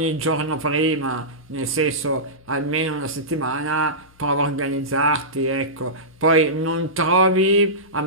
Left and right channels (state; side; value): noise; left; hum, 29 dB below the sound